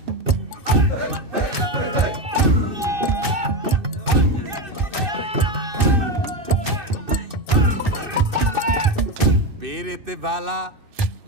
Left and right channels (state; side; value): late; left; 2.6 ms